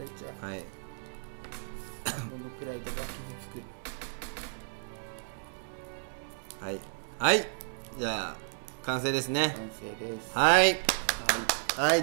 ちゃう。はい、どのくらいとか傷つく。はいはい、じゃあ完成ですね。完成です。はいはい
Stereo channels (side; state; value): left; silent; digital silence